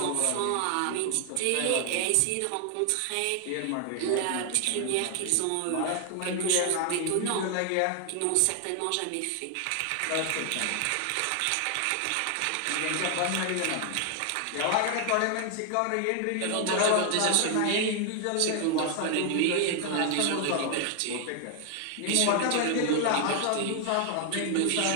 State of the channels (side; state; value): both; different; correlation 0.00